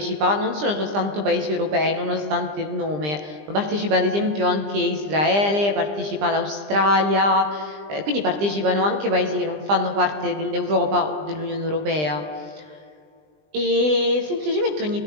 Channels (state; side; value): late; left; 20 ms